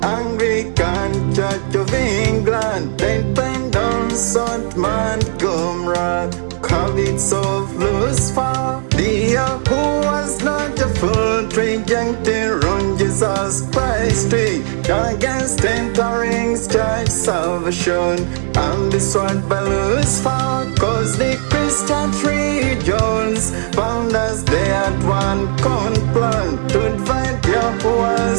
Anglican Church of England, Dependence on Montgomery, habits of Lucifer, the who was not a full trijuncte on Jesus Christ, against entering church salvation, and destroyed by Lucifer, cause the Christian regions found as they had one plan to divide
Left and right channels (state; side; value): silent; left; digital silence